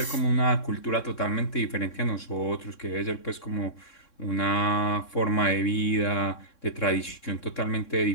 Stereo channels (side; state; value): right; late; 3.6 ms